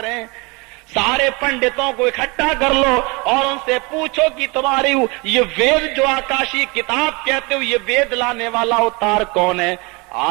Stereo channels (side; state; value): left; quieter; 27.8 dB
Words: सारे पंडितों को इकट्ठा कर लो और उनसे पूछो कि तुम्हारी ये वेद जो आकाशी किताब कहते हो, ये वेद लाने वाला अवतार कौन है?